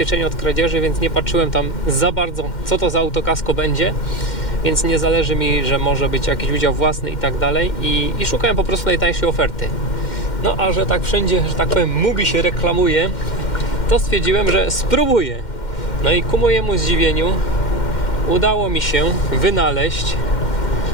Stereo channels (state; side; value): late; right; 2.1 ms